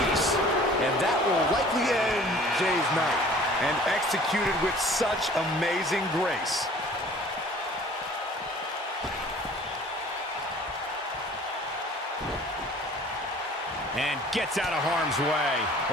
And that will likely end Jay's night. And executed with such amazing grace. And gets out of harm's way.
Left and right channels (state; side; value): normal; both; correlation 0.49